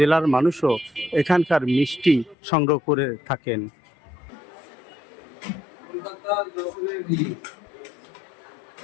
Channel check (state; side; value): drops out; right; at 2.4 s